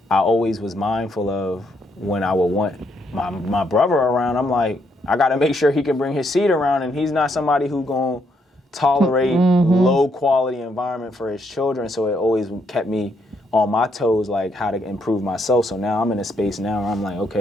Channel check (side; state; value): both; normal; correlation 0.75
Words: I always was mindful of when I would want my brother around, I'm like, I got to make sure he can bring his seed around, and he's not somebody who's going to tolerate low quality environment for his children. So it always kept me on my toes, like how to improve myself. So now I'm in a space now where I'm like,